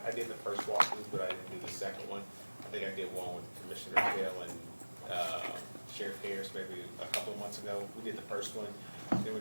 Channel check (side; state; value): both; inverted; correlation -1.00